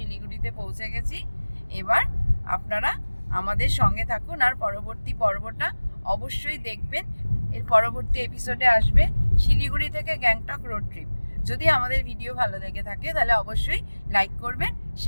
পৌঁছে গেছি। এবার আপনারা আমাদের সঙ্গে থাকুন, আর পরবর্তী পর্বটা অবশ্যই দেখবেন। এর পরবর্তী এপিসোডে আসবে শিলিগুড়ি থেকে গ্যাংটক রোড ট্রিপ। যদি আমাদের ভিডিও ভালো লেগে থাকে তাহলে অবশ্যই লাইক করবেন,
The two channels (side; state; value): both; inverted; correlation -1.00